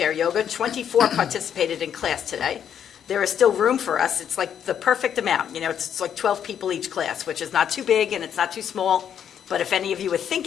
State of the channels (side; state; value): right; quieter; 8.9 dB